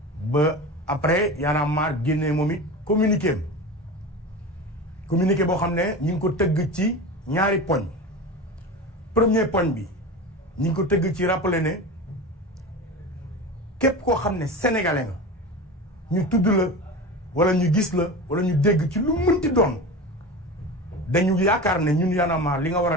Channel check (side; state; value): both; normal; correlation 0.29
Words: ba après Y'en a marre génne moom it communiqué boo xam ne ñi ngi ko tëgg ci ñaari poñ premier poñ bi ñi ngi ko tëgg ci rappeler ne képp koo xam ne sénégalais nga ñu tudd la wala ñu gis la wala ñu dégg ci lu mënti doon dañu yaakaar ne ñun Y'en a marre li nga war a